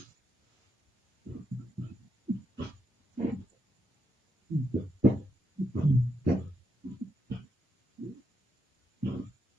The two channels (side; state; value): both; normal; correlation 0.81